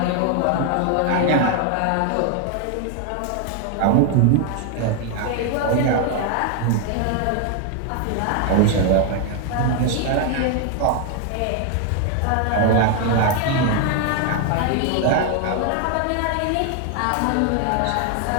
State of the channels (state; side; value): different; both; correlation 0.00